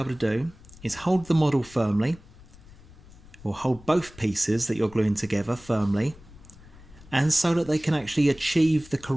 to do is hold the model firmly, or hold both pieces that you're gluing together firmly, and so that they can actually achieve the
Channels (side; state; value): left; noise; rumble, 21 dB below the sound